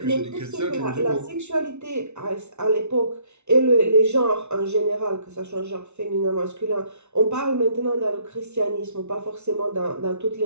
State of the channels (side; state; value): left; late; 0.82 ms